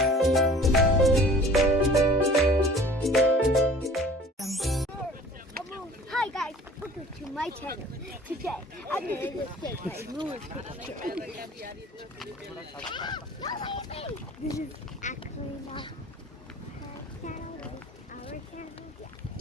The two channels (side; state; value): both; normal; correlation 0.47